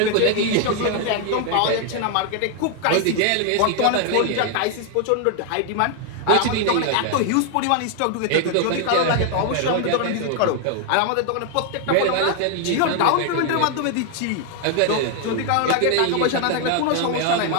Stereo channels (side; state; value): both; different; correlation 0.00